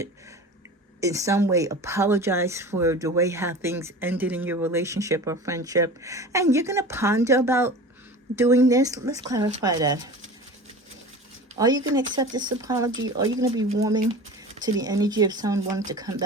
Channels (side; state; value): both; normal; correlation 0.36